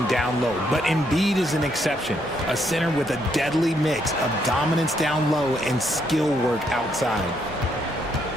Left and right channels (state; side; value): normal; both; correlation 0.74